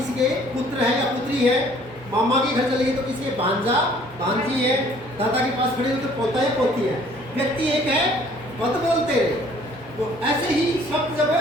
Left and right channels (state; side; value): normal; both; correlation 0.57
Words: के पुत्र है या पुत्री है, मामा के घर चले गए तो किसी के भांजा भांजी है, दादा के पास खड़े हो तो पोता है पोती है, व्यक्ति एक है, पद बोलते हैं। तो ऐसे ही शब्द जब